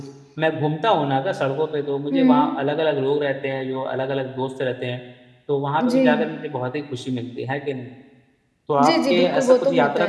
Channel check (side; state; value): both; identical; correlation 1.00